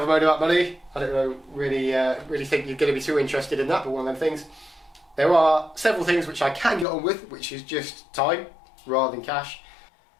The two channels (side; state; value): right; drops out; at 6.9 s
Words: a moan about money. I don't know, really think you're going to be too interested in that, but one of them things. There are several things which I can get on with, which is just time rather than cash.